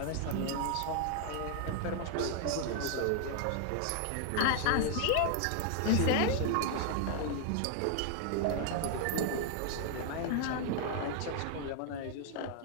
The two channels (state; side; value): different; both; correlation 0.00